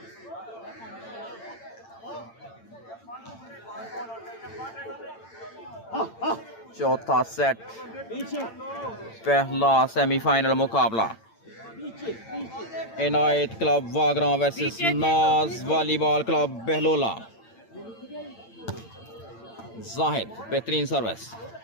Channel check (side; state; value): right; late; 8.8 ms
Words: चौथा सेट, पहला सेमीफाइनल मुकाबला। इनायत क्लब वागरा वर्सेस नाज वॉलीबॉल क्लब बहलोला। जाहिद, बेहतरीन सर्विस,